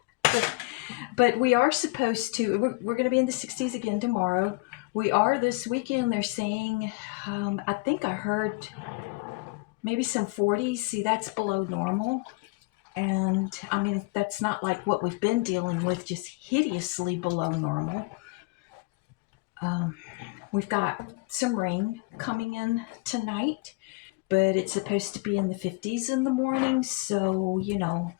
But we are supposed to, we're going to be in the 60s again tomorrow. We are this weekend, they're saying, I think I heard maybe some 40s. See, that's below normal. And I mean, that's not like what we've been dealing with, just hideously below normal. We've got some rain coming in tonight, but it's supposed to be in the 50s in the morning. So, you know,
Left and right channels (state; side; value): quieter; right; 25.0 dB